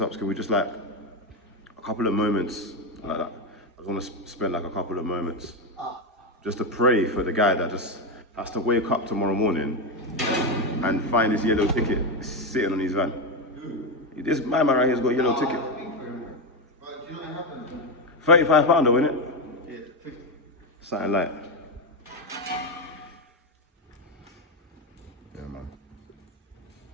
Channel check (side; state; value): both; normal; correlation 0.10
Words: up, can we just like, a couple of moments like that. I just want to spend like a couple of moments just to pray for the guy that just has to wake up tomorrow morning and find his yellow ticket sitting on his van. This man right here has got a yellow ticket. £35 though, innit? Yeah, 50. Something like. Yeah, man.